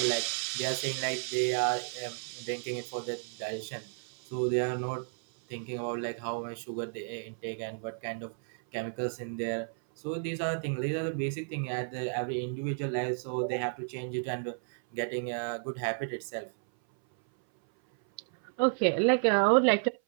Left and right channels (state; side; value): silent; left; 56 dB below the other